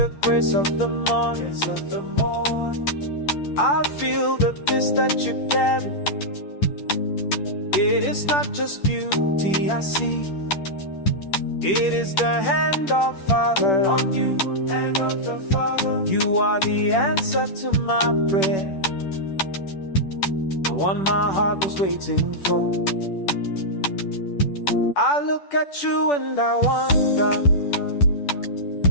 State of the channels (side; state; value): right; late; 10 ms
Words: grace of the morning. I feel the peace that you carry. It is not just beauty I see. It is the hand of Father on you. You are the answer to my prayer, the one my heart was waiting for. I look at you and I wonder